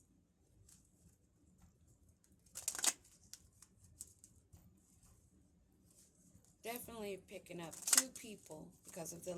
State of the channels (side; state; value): both; identical; correlation 1.00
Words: Definitely picking up two people because of the